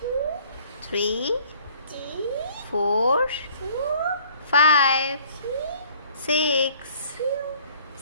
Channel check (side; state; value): both; inverted; correlation -0.55